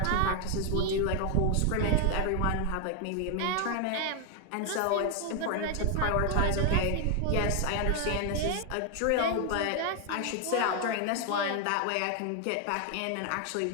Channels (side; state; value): both; different; correlation 0.01